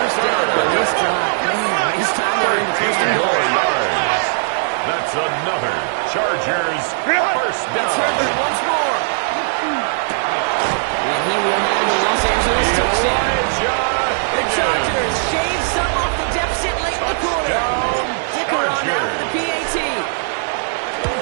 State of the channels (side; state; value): left; silent; 66 dB below the other